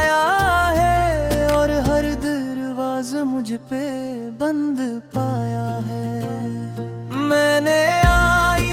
है, और हर दरवाज़ा मुझ पे बंद पाया है। मैंने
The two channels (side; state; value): both; identical; correlation 1.00